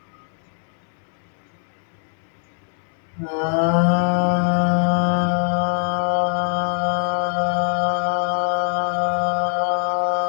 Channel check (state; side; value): silent; right; 64 dB below the other